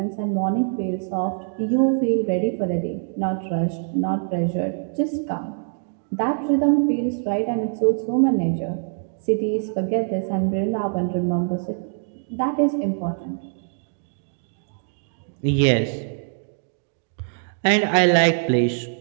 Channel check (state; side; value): silent; left; 63 dB below the other